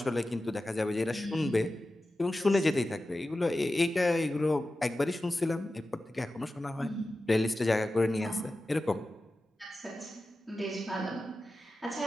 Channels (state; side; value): normal; both; correlation 0.94